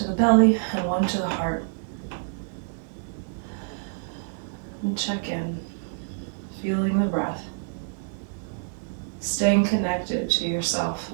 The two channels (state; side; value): silent; left; digital silence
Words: the belly and one to the heart. And check in, feeling the breath. Staying connected to yourself,